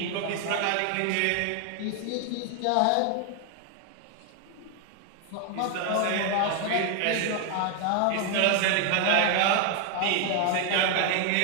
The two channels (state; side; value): different; both; correlation 0.00